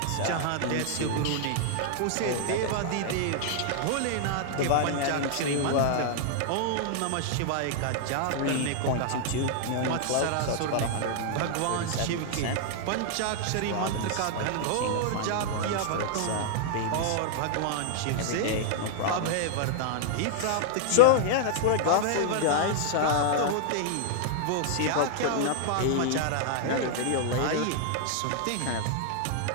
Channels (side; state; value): both; different; correlation -0.01